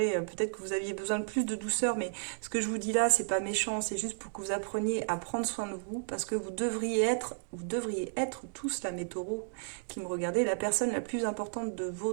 Peut-être que vous aviez besoin de plus de douceur, mais ce que je vous dis là, c'est pas méchant, c'est juste pour que vous appreniez à prendre soin de vous, parce que vous devriez être tous là, mes taureaux qui me regardez, la personne la plus importante de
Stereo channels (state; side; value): silent; left; digital silence